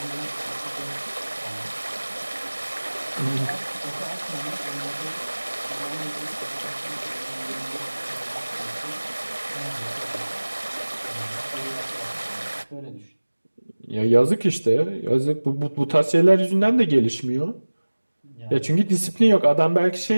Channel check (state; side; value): inverted; both; correlation -1.00